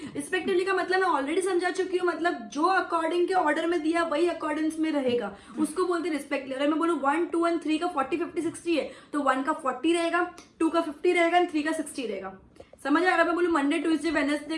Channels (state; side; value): identical; both; correlation 1.00